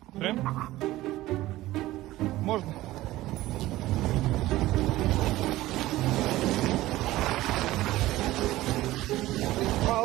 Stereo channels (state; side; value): quieter; left; 16.7 dB